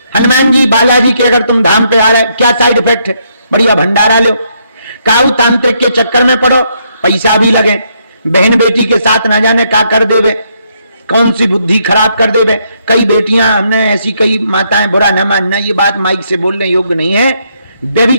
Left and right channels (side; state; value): both; inverted; correlation -0.74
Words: हनुमान जी बालाजी के अगर तुम धाम पे आ रहे, क्या साइड इफेक्ट है? बढ़िया भंडारा लो, काऊ तांत्रिक के चक्कर में पड़ो, पैसा भी लगे, बहन बेटी के साथ ना जाने क्या कर देवे, कौन सी बुद्धि खराब कर देवे। कई बेटियां, हमने ऐसी कई माताएं, बुरा न मानना, ये बात माइक से बोलने योग्य नहीं है,